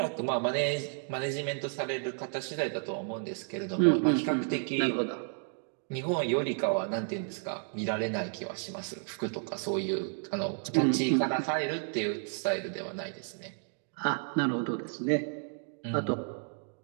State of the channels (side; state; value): left; silent; 56 dB below the other